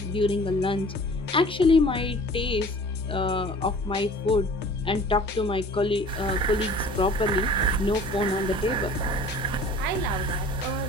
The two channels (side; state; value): both; normal; correlation 0.46